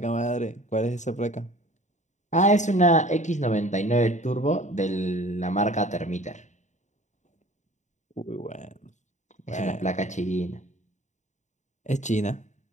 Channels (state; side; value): late; right; 0.35 ms